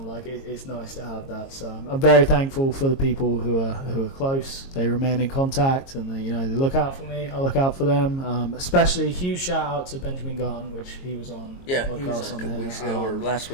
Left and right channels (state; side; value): late; right; 22 ms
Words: like it's nice to have that. So I'm very thankful for the people who are close. They remain in contact, and they look out for me. I look out for them. Especially a huge shout out to Benjamin Gunn, which he was on the podcast he was on a couple here weeks ago or last